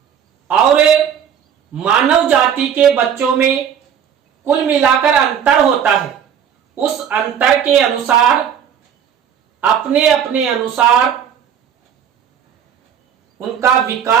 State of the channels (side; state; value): left; quieter; 8.4 dB